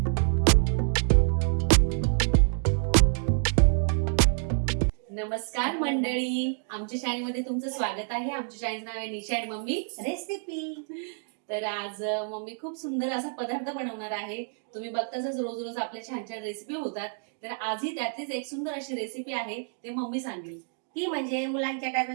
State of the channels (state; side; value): silent; left; 59 dB below the other